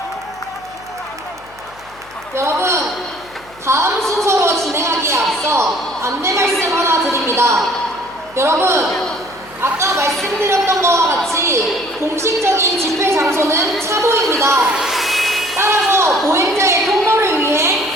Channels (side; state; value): left; noise; hum, 25 dB below the sound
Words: 여러분, 다음 순서로 진행하기에 앞서 안내 말씀 하나 드립니다. 여러분, 아까 말씀드렸던 것과 같이 공식적인 집회 장소는 차도입니다. 따라서 보행자의 통로를 위해